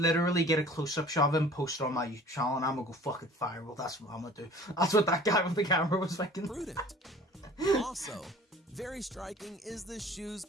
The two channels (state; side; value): normal; both; correlation 0.47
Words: literally get a close-up shot of him, post it on my YouTube channel, and I'm gonna go fucking viral. That's what I'm gonna do. That's what that guy with the camera was thinking. Prudent. Also, very striking is the shoes